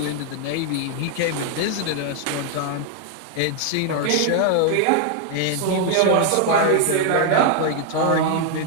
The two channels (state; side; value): different; both; correlation 0.00